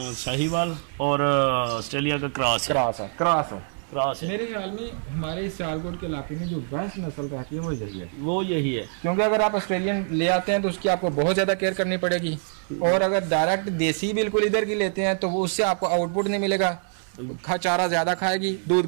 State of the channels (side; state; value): left; silent; 62 dB below the other